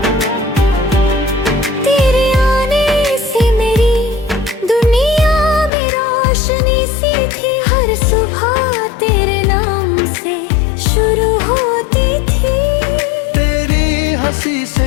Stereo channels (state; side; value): drops out; right; at 5.7 s